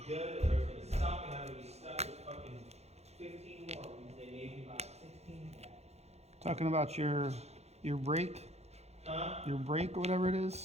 good, or it's gonna suck, and I'm gonna be stuck with fucking 15 more, means they made me buy 16 back. Talking about your brake, Huh? your brake or whatever it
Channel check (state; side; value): late; left; 0.31 ms